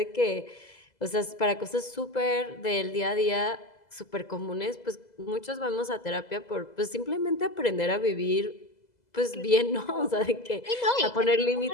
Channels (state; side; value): late; right; 2.0 ms